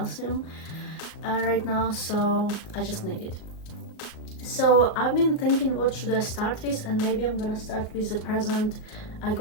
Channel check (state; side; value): late; right; 38 ms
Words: right now, so I just need it. So I've been thinking what should I start with, and maybe I'm gonna start with a present I